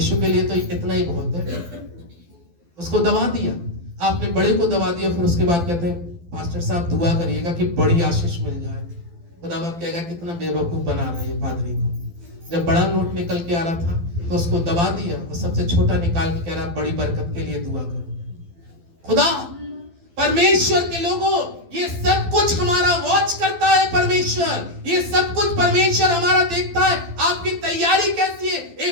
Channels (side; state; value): left; late; 12 ms